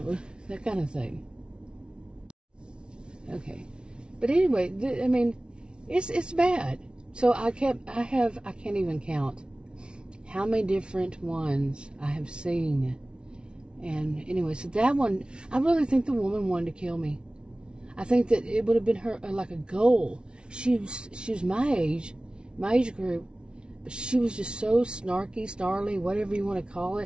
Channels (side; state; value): left; late; 0.056 ms